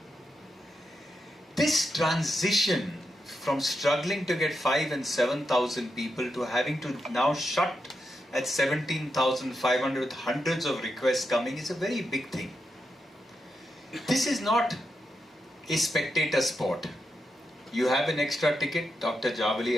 This transition from struggling to get 5,000 and 7,000 people to having to now shut at 17,500 with hundreds of requests coming is a very big thing. This is not a spectator sport. You have an extra ticket, Dr. Javali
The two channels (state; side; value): normal; both; correlation 0.85